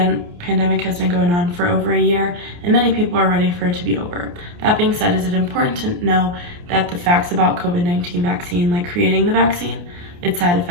has been going on for over a year, and many people are ready for it to be over. That being said, is it important to know that the facts about COVID-19 vaccine, like creating the vaccine, its side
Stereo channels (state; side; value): late; left; 29 ms